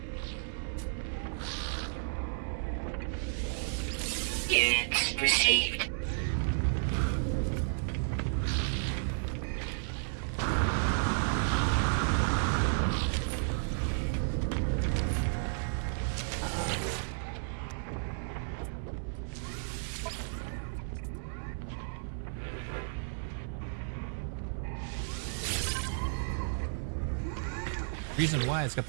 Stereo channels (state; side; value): silent; left; 56 dB below the other